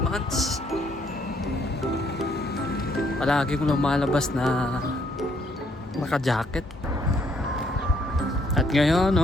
months. Palagi kong lumalabas na naka-jacket. At ngayon,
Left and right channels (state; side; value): normal; both; correlation 0.69